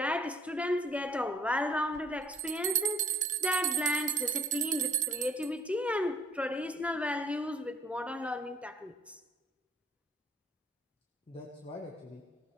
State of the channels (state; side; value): normal; both; correlation 0.55